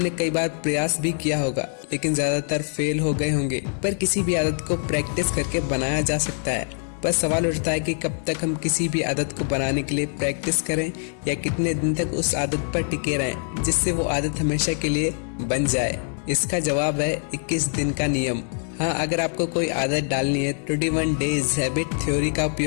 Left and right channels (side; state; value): right; silent; 63 dB below the other